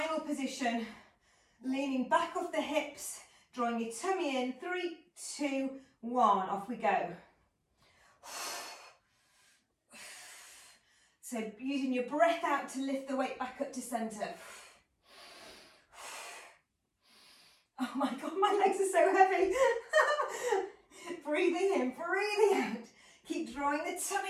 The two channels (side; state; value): both; identical; correlation 1.00